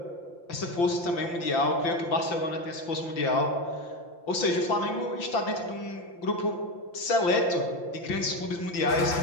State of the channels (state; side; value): late; right; 5.8 ms